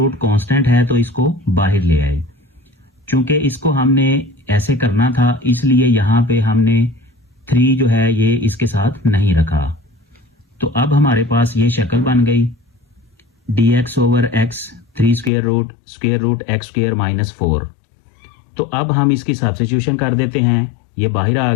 कांस्टेंट है तो इसको बाहर ले आए। चूंकि इसको हमने ऐसे करना था इसलिए यहाँ पे हमने 3 जो है ये इसके साथ नहीं रखा। तो अब हमारे पास ये शक्ल बन गई dx over x 3 square root x square minus 4। तो अब हम इसकी सब्स्टिट्यूशन कर देते हैं। ये बाहर आ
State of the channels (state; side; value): drops out; right; at 15.3 s